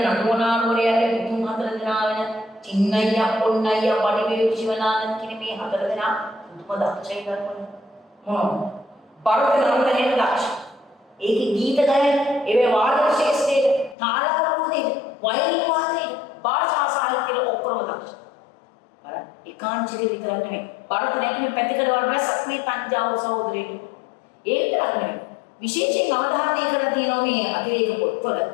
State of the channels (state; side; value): drops out; right; at 14.0 s